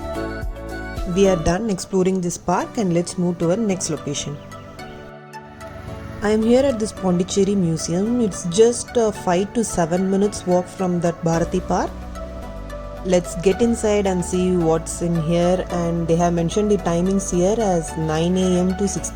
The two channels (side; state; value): both; identical; correlation 1.00